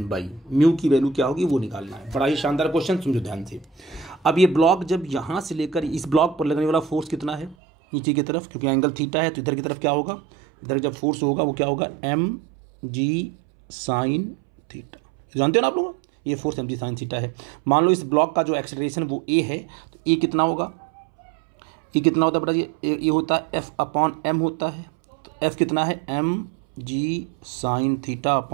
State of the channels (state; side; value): drops out; left; at 7.6 s